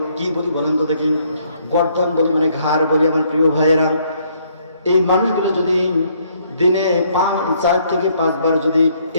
কি বলি বলেন তো দেখি? গর্দান বলি, মানে ঘাড় বলি। আমার প্রিয় ভাইয়েরা, এই মানুষগুলো যদি দিনে 4 থেকে 5 বার যদি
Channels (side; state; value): both; inverted; correlation -0.68